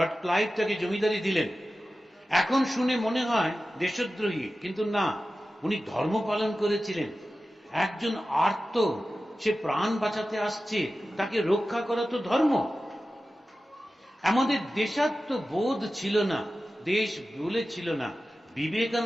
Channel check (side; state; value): both; normal; correlation 0.94